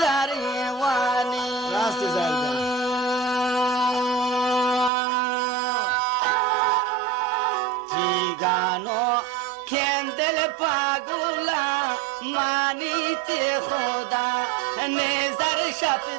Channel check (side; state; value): left; drops out; at 4.9 s